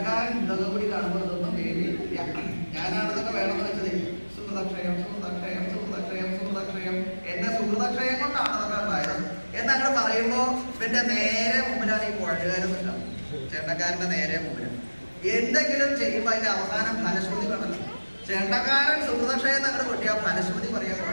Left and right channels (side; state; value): both; inverted; correlation -1.00